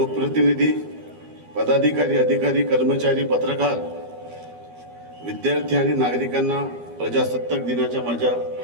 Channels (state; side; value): late; left; 12 ms